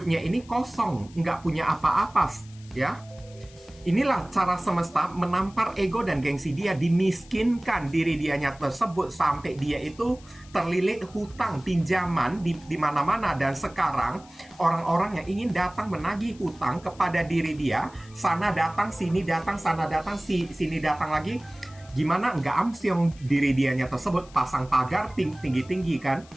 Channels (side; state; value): left; noise; hiss, 24 dB below the sound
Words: ini kosong, nggak punya apa-apa, ya. Inilah cara semesta menampar ego dan gengsi dia, dimiskinkan diri dianya tersebut sampai dia itu terlilit hutang, pinjaman di mana-mana. Dan sekarang orang-orang yang ingin datang menagih hutang kepada diri dia, sana datang, sini datang, sana datang, sini datang lagi. Gimana nggak amsyong diri dianya tersebut, pasang pagar tinggi-tinggi kan,